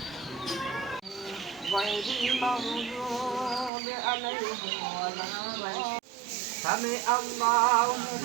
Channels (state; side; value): drops out; left; at 3.7 s